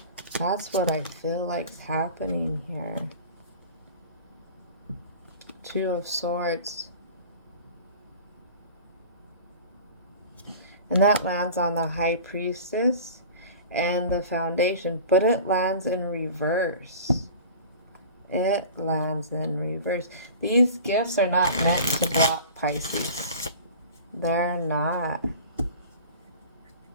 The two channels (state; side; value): inverted; both; correlation -0.39